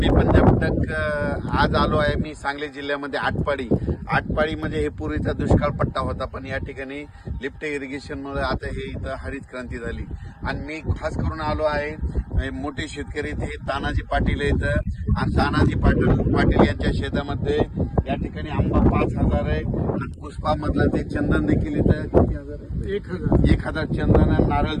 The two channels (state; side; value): identical; both; correlation 1.00